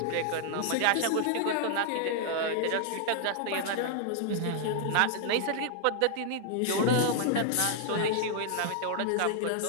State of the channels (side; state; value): both; different; correlation 0.00